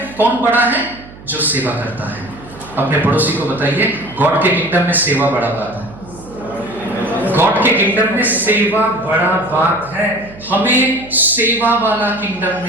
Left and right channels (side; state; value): right; noise; hum, 19 dB below the sound